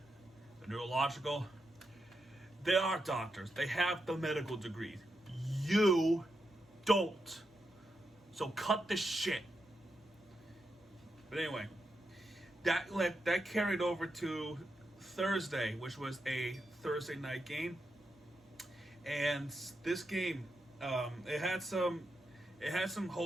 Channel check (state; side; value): normal; both; correlation 0.85